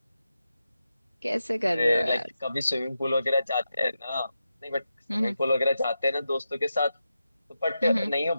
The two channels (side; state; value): both; inverted; correlation -0.89